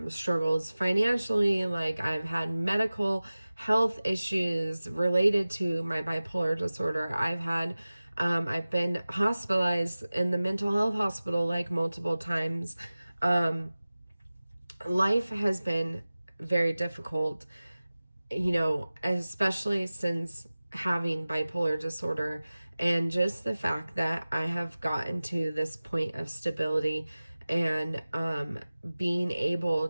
struggles financially. Like, I've had medical health issues related to my bipolar disorder. I've been hospitalized in the mental health hospital like multiple times. Life has been very difficult, especially since having bipolar disorder, and just the fact that I have gotten to this point of stability, and being able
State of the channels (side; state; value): both; inverted; correlation -0.97